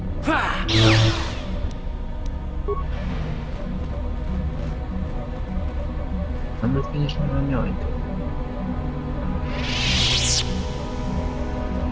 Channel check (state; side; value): identical; both; correlation 1.00